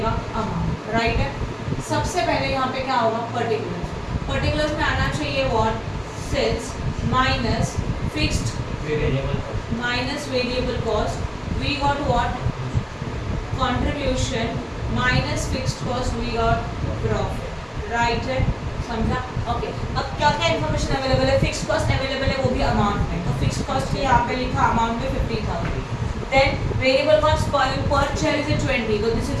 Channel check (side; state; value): both; identical; correlation 1.00